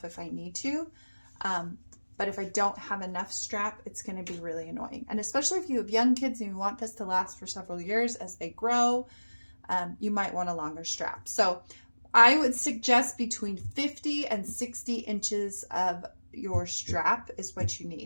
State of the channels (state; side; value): inverted; both; correlation -1.00